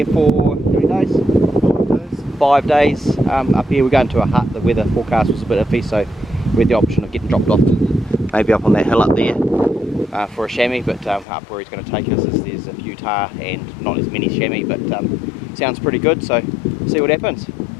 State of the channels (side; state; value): right; drops out; at 11.2 s